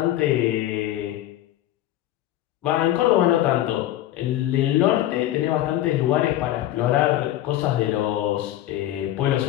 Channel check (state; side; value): quieter; right; 13.6 dB